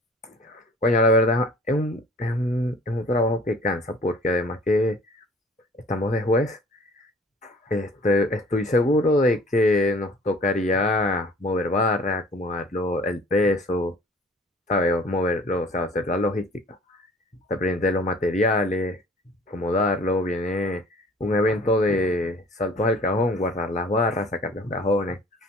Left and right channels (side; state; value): both; normal; correlation 0.50